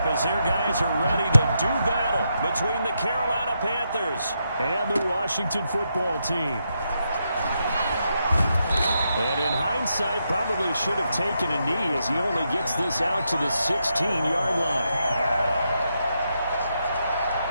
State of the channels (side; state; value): both; inverted; correlation -0.82